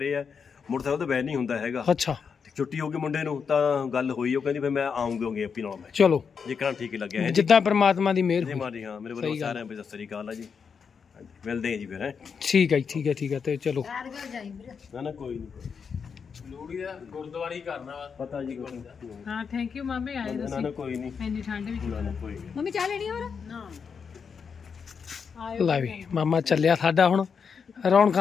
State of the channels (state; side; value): quieter; right; 6.2 dB